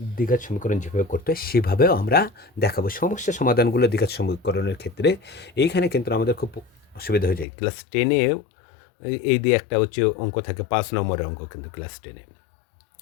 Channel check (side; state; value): right; drops out; at 7.5 s